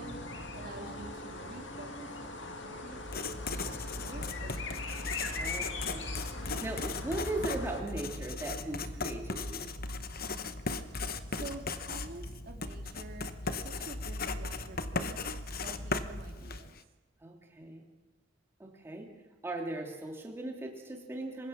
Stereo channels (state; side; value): normal; both; correlation 0.39